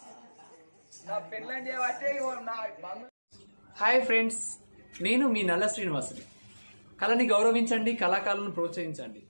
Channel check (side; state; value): both; inverted; correlation -1.00